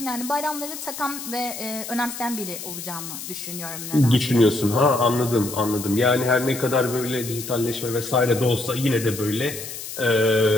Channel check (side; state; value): left; noise; hiss, 9 dB below the sound